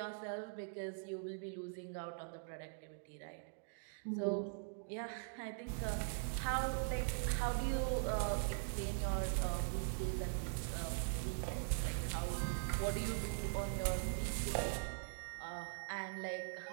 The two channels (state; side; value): silent; left; digital silence